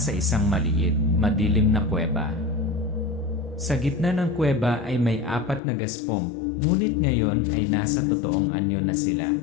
isang maliit, madilim na kuweba. Sa gitna ng kuweba ay may 4 na gaspong, ngunit ngayon ay nasa totoong anyo na sila,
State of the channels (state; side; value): drops out; right; at 5.6 s